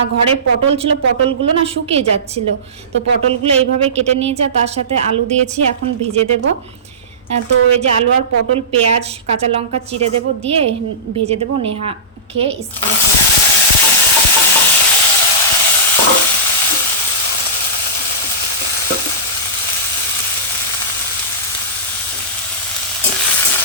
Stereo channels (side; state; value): both; normal; correlation -0.18